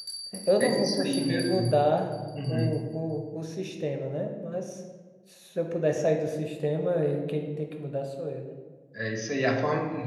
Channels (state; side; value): identical; both; correlation 1.00